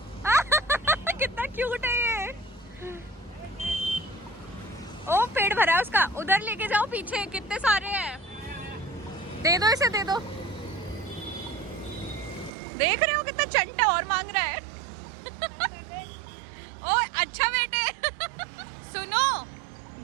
कितना क्यूट है ये। ओ पेट भरा है उसका, उधर लेके जाओ पीछे, कितने सारे हैं। दे दो इसे, दे दो। देख रहे हो कितना चंटा और मांग रहा है। ओ अच्छा बेटे। सुनो,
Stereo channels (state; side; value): drops out; left; at 12.5 s